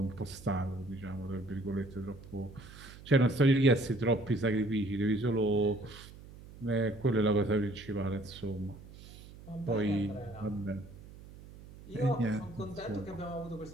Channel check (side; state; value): right; noise; hum, 18 dB below the sound